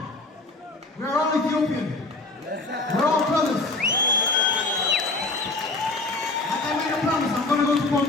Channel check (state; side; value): quieter; right; 3.2 dB